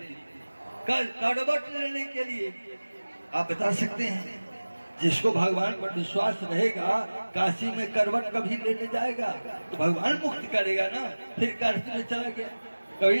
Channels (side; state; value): both; inverted; correlation -1.00